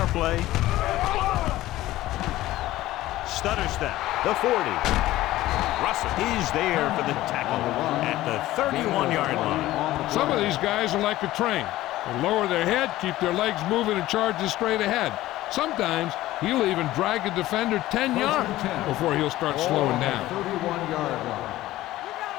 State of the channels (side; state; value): right; quieter; 15.9 dB